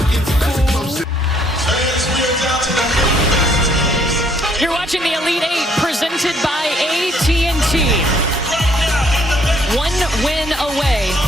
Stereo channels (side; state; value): both; normal; correlation 0.66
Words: You're watching the Elite Eight presented by AT&T. 1 win away